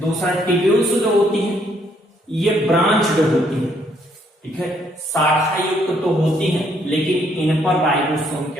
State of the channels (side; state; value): both; normal; correlation 0.69